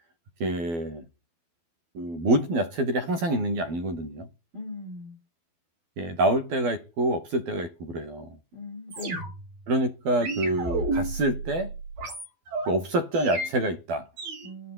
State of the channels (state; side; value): late; left; 12 ms